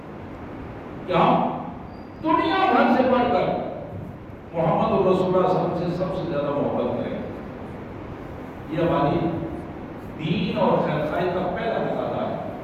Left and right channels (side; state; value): both; identical; correlation 1.00